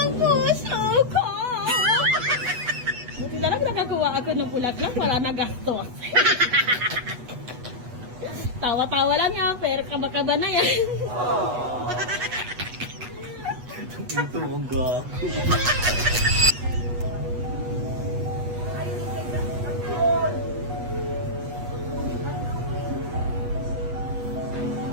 puso ko. Buti na lang nakakuha ako ng bulaklak. Wala na gastos. Tawa-tawa lang yan. Pero kaba-kaba na yan. Ito, ang gago.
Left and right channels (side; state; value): left; late; 8.2 ms